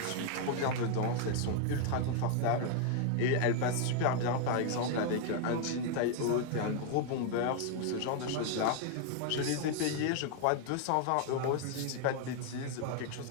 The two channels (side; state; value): both; different; correlation 0.00